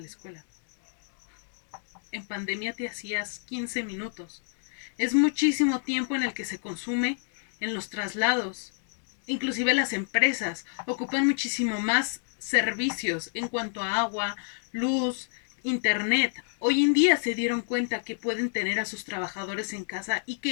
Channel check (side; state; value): right; silent; digital silence